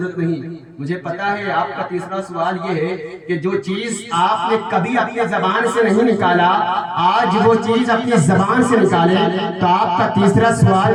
نہیں، مجھے پتا ہے آپ کا تیسرا سوال یہ ہے کہ جو چیز آپ نے کبھی اپنی زبان سے نہیں نکالا، آج وہ چیز اپنی زبان سے نکالے۔ تو آپ کا تیسرا سوال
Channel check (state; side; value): identical; both; correlation 1.00